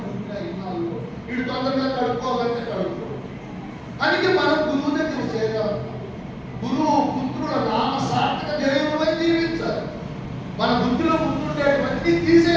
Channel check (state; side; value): identical; both; correlation 1.00